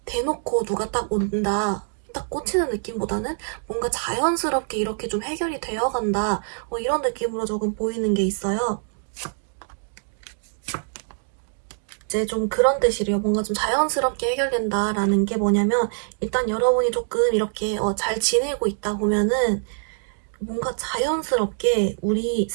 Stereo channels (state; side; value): silent; left; digital silence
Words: 대놓고 누가 딱 온다. 딱 꽂히는 느낌보다는 뭔가 자연스럽게 이렇게 좀 해결이 되어 간다. 이런 느낌으로 조금 보이는 게 있어요. 이제 좀 그런 뜻이래요. 뭔가 좀 자연스럽게 해결된다라는 게 뭐냐면 일단 여러분이 조금 이렇게 잘 지내고 있다 보면은 뭔가 자연스럽게 우리